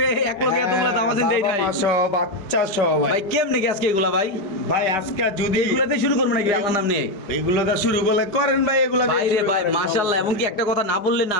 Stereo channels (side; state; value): right; late; 4.9 ms